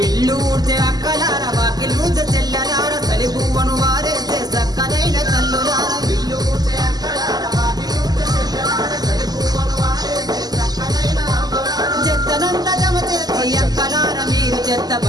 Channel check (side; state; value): left; late; 0.19 ms